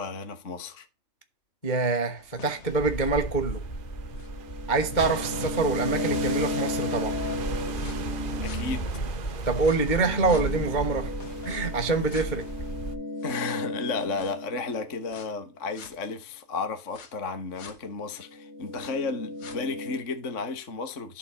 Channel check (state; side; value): late; right; 2.2 ms